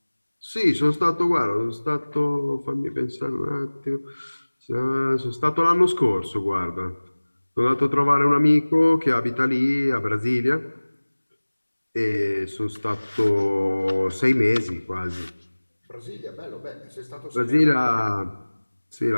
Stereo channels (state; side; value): inverted; both; correlation -1.00